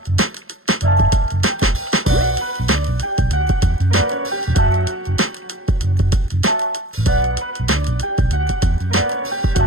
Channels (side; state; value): left; late; 0.61 ms